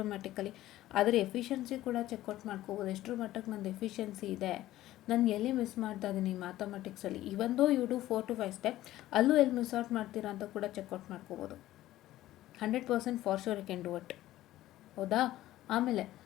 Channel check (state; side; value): quieter; right; 14.9 dB